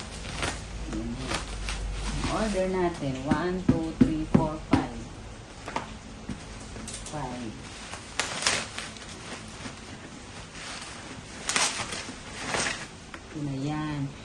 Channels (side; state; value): both; identical; correlation 1.00